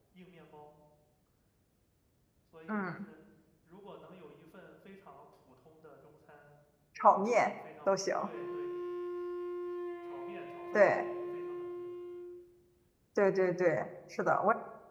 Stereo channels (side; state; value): both; identical; correlation 1.00